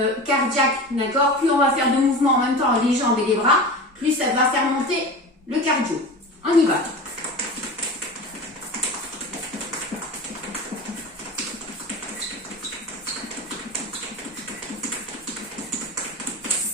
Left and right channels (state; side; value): normal; both; correlation 0.31